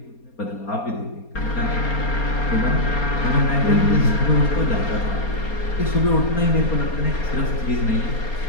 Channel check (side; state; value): right; late; 4.3 ms